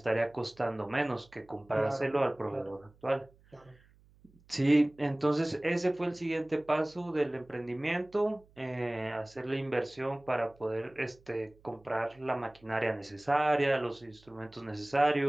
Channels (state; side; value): noise; right; hum, 29 dB below the sound